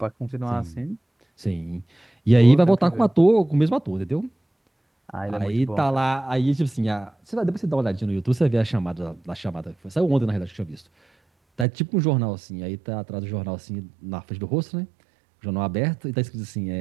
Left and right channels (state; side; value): drops out; left; at 11.7 s